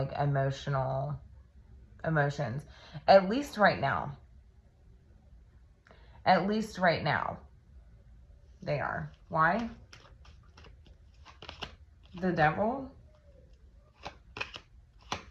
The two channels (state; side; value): identical; both; correlation 1.00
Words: emotions, at least right now. At least right now, they are. Why? The Devil.